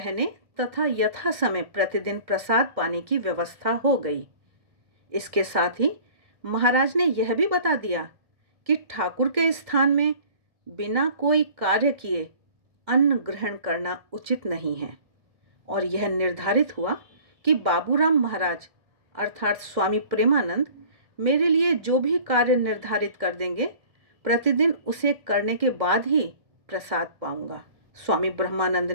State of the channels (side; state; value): left; late; 1.7 ms